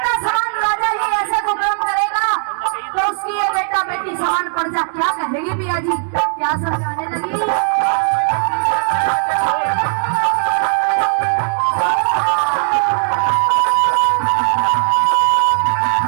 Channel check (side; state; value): left; silent; digital silence